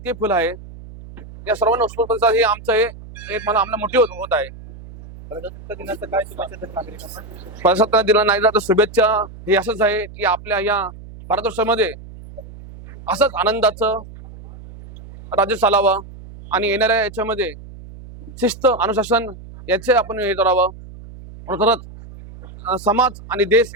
ते फुल आहे. या सर्वांना उत्स्फूर्त हे आमचं एक मला आम्हाला मोठी होत आहे. प्रजासत्ताक दिनाचं काय शुभेच्छा देतात नागरिकांना? प्रजासत्ताक दिनानिमित्त शुभेच्छा हे असंच आहे की आपल्या या भारतवर्षामध्ये असंच आनंदाचं राज्य चालावं आणि येणाऱ्या याच्यामध्ये शिस्त, अनुशासन याचे आपण हे करावं. खरंच समाज आणि देश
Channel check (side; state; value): right; noise; hum, 16 dB below the sound